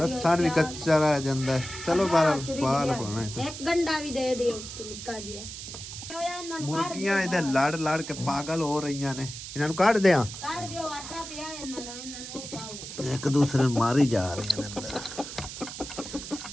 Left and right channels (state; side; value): noise; right; hiss, 10 dB below the sound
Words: ਲਸਣ ਵੀ ਕੱਚਾ ਰਹਿ ਜਾਂਦਾ ਹੈ। ਚਲੋ ਬਾਹਰ ਪਾਲ ਪਾਣਾ ਇੱਕ ਗੰਡਾ ਵੀ ਦੇ ਦਿਓ ਨਿੱਕਾ ਜਿਹਾ ਮੁਰਗੀਆਂ ਇਹਦੇ ਲੜ ਕੇ ਪਾਗਲ ਹੋ ਰਹੀਆਂ ਨੇ ਇਹਨਾਂ ਨੂੰ ਕੱਢ ਦਿਆਂ ਕੱਢ ਦਿਓ ਆਟਾ ਪਿਆ ਇਹਨਾਂ ਦਾ ਇਹਨਾਂ ਨੂੰ ਪਾਓ ਇੱਕ ਦੂਸਰੇ ਨੂੰ ਮਾਰੀ ਜਾ ਰਹੀਆਂ ਨੇ